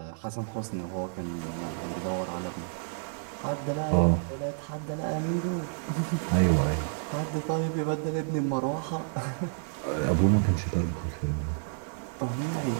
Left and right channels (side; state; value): left; silent; 58 dB below the other